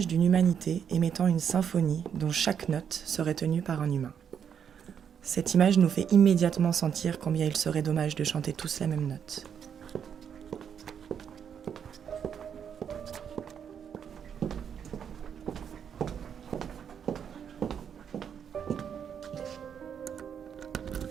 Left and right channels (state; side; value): quieter; left; 7.9 dB